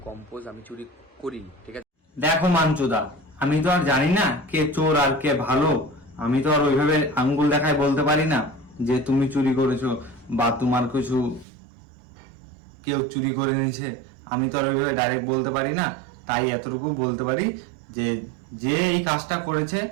কম্পোজ আমি চুরি করিনি, ঠিক আছে? দেখো মাঞ্চুদা, আমি তো আর জানি না কে চোর আর কে ভালো। আমি তো আর ওইভাবে আঙ্গুল দেখায় বলতে পারি না যে তুমি চুরি করেছো বা তোমার কিছু কেউ চুরি করে নিয়েছে। আমি তো আর ওইভাবে ডাইরেক্ট বলতে পারি না। তাই এতটুকু বলতে পারি যে যে এই কাজটা করেছে,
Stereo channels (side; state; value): left; drops out; at 11.5 s